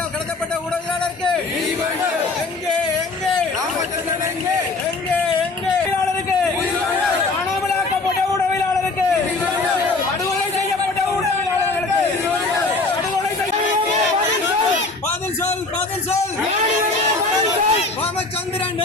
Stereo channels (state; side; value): quieter; right; 3.5 dB